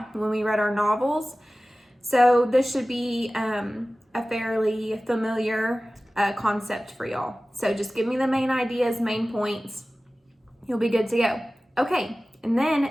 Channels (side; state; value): both; normal; correlation 0.97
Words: when we read our novels. So this should be a fairly familiar concept for y'all. So just give me the main ideas, main points. You'll be good to go. Okay, and